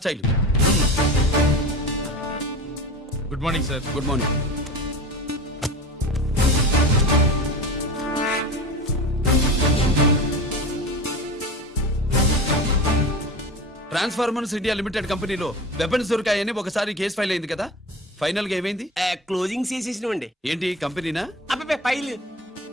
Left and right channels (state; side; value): normal; both; correlation 0.31